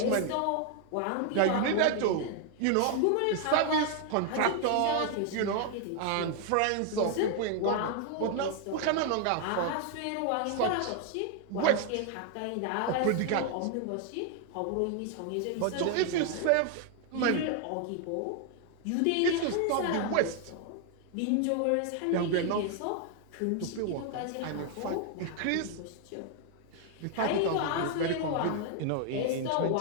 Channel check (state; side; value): different; both; correlation 0.00